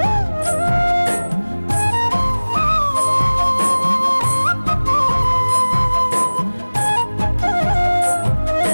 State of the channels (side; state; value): both; inverted; correlation -1.00